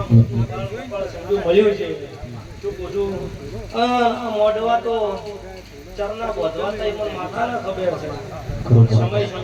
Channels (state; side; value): identical; both; correlation 1.00